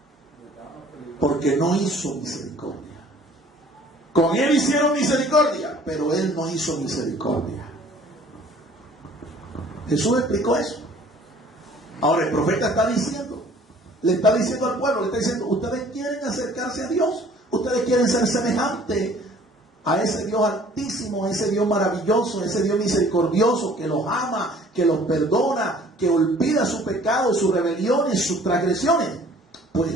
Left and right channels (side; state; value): both; normal; correlation 0.53